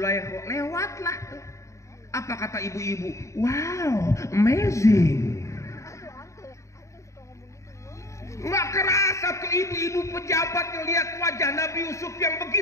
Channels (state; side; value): late; right; 0.15 ms